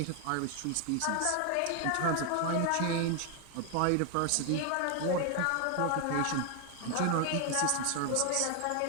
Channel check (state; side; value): different; both; correlation 0.01